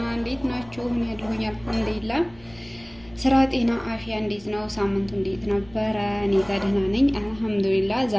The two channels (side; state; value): left; noise; rumble, 23 dB below the sound